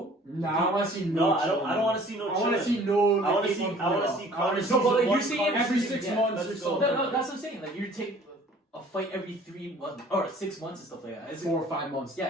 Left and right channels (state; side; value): normal; both; correlation 0.52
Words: Nah, I want to see No, no. I don't want to see no. I want to chilling. see no. I want to like, see. 8-month I want to layoff. see Conor. No, but like, you're one saying Conor every season. 6 Yeah, months let's or go. so. No, that's what I'm saying. Like you take a fight every 3 months or 6 months and stuff like that. It's 4 or 5 months.